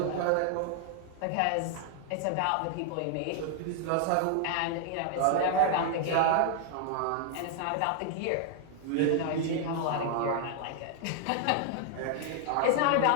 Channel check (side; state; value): both; different; correlation 0.00